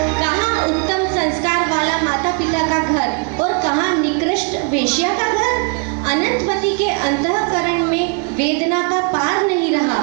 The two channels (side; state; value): left; quieter; 35.6 dB